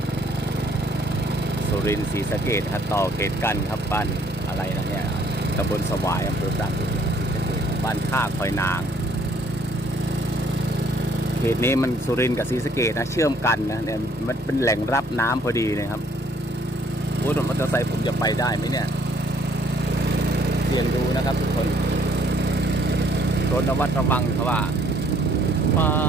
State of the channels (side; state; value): both; normal; correlation 0.63